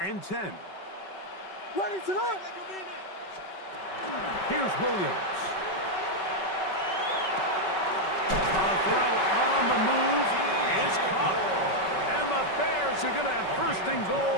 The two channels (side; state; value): right; late; 5.3 ms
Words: 10. Ready, set. Here's Williams. A throw on the move is caught. And the Bears are going to have first and